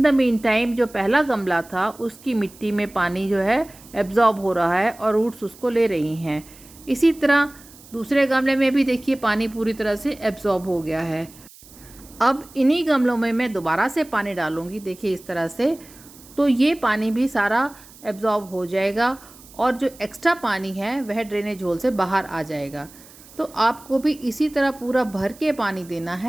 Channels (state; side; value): noise; right; hiss, 22 dB below the sound